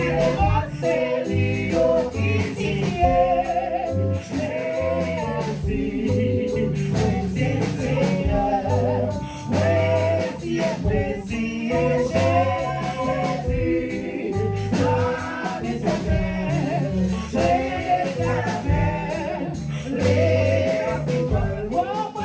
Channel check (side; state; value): both; identical; correlation 1.00